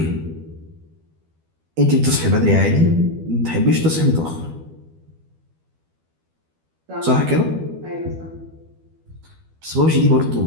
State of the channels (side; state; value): left; late; 12 ms